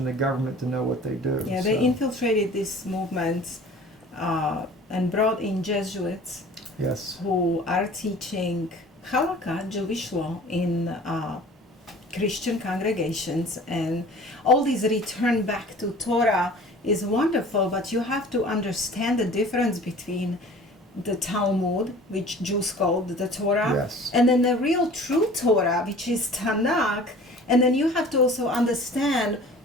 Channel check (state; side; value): normal; both; correlation 0.45